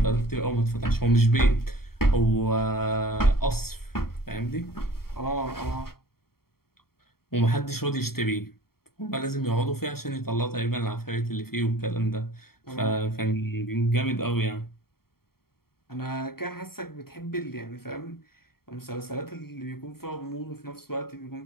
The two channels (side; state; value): right; late; 0.94 ms